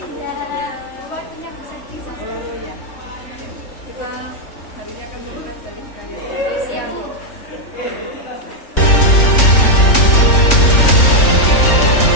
Kita hari ini akan melihat dari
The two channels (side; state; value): right; late; 3.5 ms